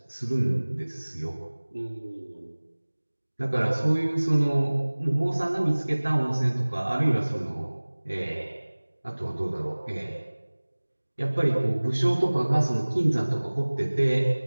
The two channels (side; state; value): both; inverted; correlation -1.00